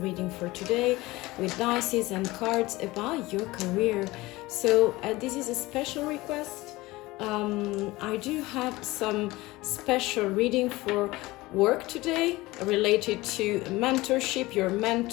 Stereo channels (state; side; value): quieter; right; 20.0 dB